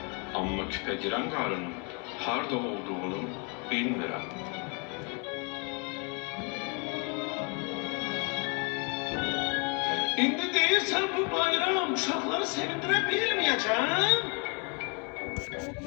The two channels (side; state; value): right; quieter; 34.4 dB